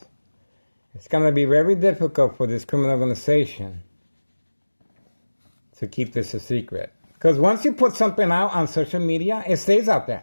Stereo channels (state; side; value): inverted; both; correlation -1.00